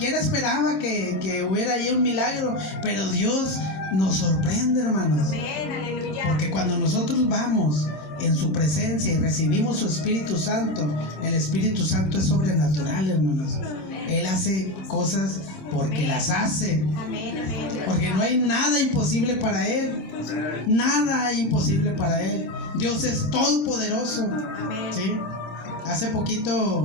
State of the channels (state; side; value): late; right; 27 ms